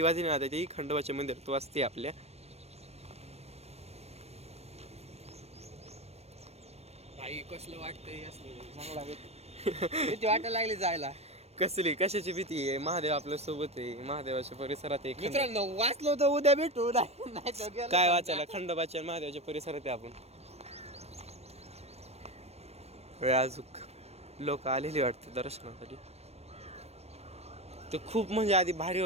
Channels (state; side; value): late; left; 0.31 ms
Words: वाजली ना, ती खंडोबाच्या मंदिरात वाजते आपल्या. भाई कसलं वाटतंय, चांगला भीती वाटायला लागली जायला. कसली कशाची भीती आहे? महादेव आपल्या सोबत आहे, महादेवाच्या परिसरात आहे. मित्रांनो, वाचलो तर उद्या भेटू, नाही तर काय वाचायला? खंडोबाच्या आणि महादेवाच्या परिसरात आहे आपण. अजूक लोक आलेली वाटते दर्शनासाठी. ते खूप म्हणजे आधी भारी